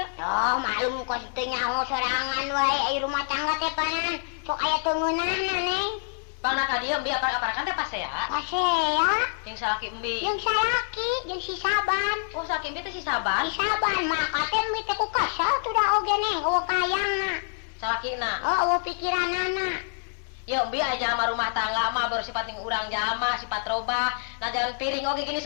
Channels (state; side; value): silent; right; 60 dB below the other